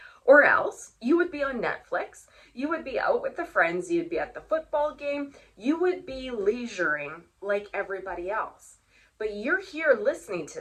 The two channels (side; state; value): both; identical; correlation 1.00